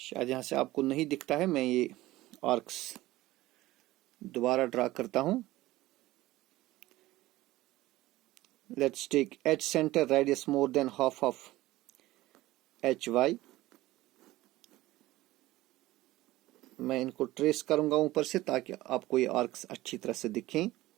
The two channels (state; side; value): quieter; left; 17.4 dB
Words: यहां से आपको नहीं दिखता है, मैं ये आर्क्स दोबारा ड्रा करता हूं। Let's take H centre, radius more than half of HY। मैं इनको ट्रेस करूंगा ऊपर से ताकि आपको ये आर्क्स अच्छी तरह से दिखें।